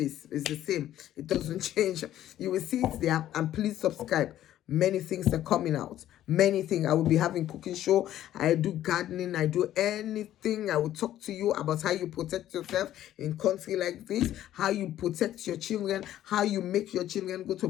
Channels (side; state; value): right; quieter; 12.5 dB